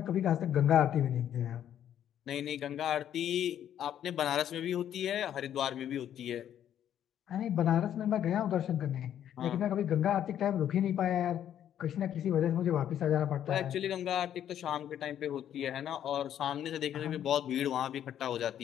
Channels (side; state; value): right; quieter; 10.3 dB